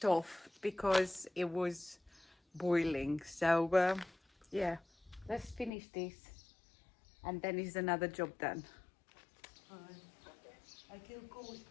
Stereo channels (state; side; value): drops out; right; at 5.7 s